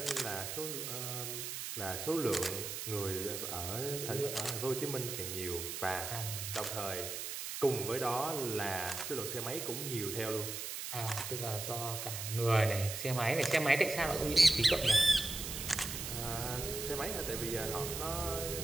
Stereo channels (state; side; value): noise; right; hiss, 5 dB below the sound